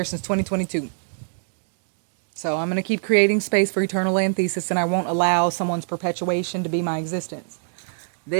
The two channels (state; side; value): silent; left; digital silence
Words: since 2022. So I'm going to keep creating space for Eternal Antheses, and I won't allow someone's perpetuation to be my existence.